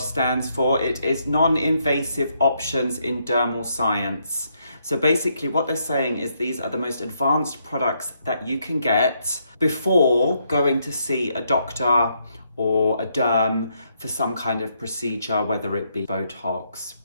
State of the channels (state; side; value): inverted; both; correlation -0.75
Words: for. It is non-invasive options in dermal science. So basically what they're saying is these are the most advanced products that you can get before going to see a doctor or a derm for some kind of procedure, whether it be Botox,